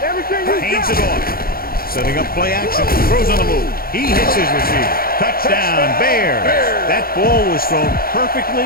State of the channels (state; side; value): late; right; 0.43 ms